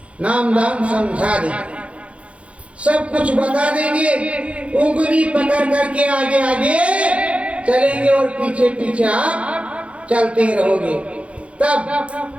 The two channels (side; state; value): left; late; 0.062 ms